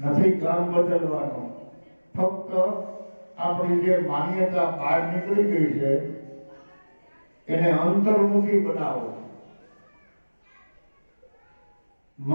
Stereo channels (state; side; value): inverted; both; correlation -1.00